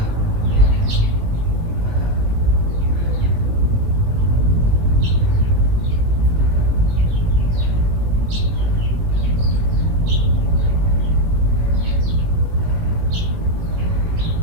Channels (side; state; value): left; late; 18 ms